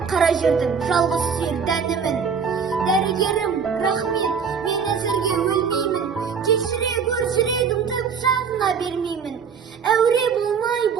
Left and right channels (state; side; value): quieter; left; 6.2 dB